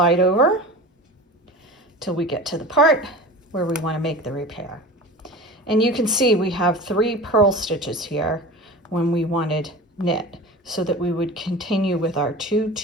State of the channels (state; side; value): normal; both; correlation 0.35